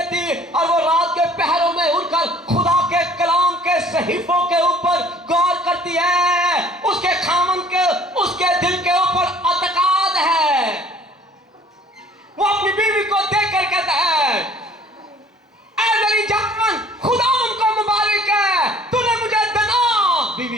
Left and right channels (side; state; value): both; normal; correlation 0.53